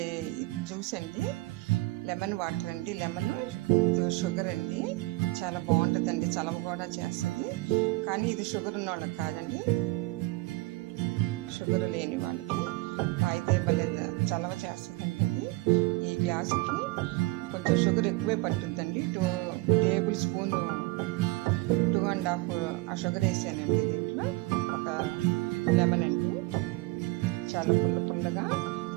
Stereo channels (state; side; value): quieter; left; 22.0 dB